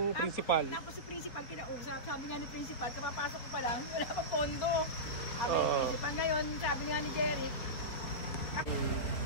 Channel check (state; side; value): late; right; 4.6 ms